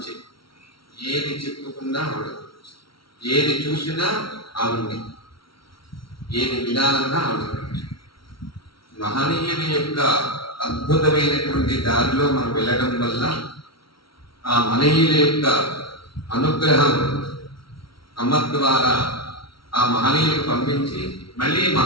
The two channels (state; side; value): late; right; 0.74 ms